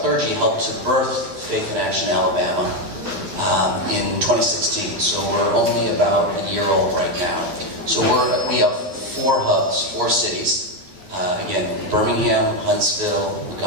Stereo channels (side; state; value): left; late; 12 ms